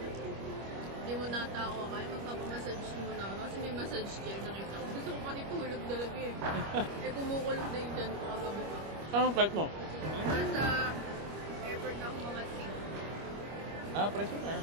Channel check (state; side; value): late; left; 25 ms